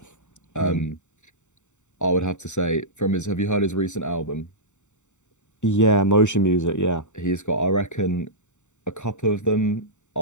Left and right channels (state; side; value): late; right; 0.84 ms